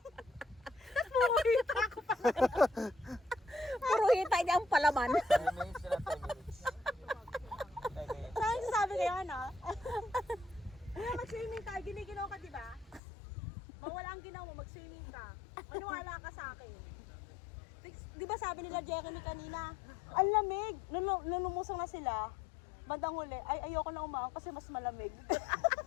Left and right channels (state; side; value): drops out; right; at 13.0 s